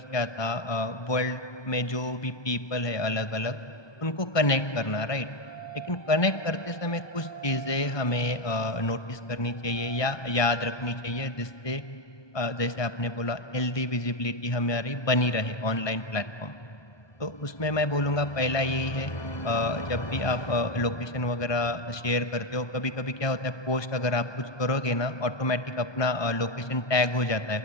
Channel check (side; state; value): right; late; 1.2 ms